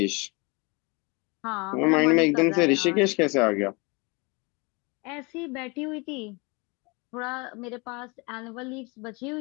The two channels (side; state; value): right; quieter; 28.4 dB